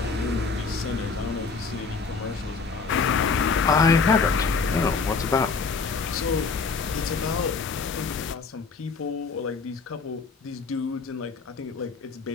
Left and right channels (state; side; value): quieter; right; 4.8 dB